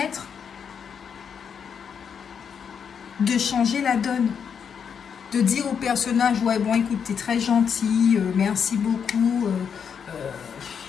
de changer la donne. De dire au personnage, ouais bon écoute, t'es très gentil, merci beaucoup,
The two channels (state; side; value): quieter; right; 7.1 dB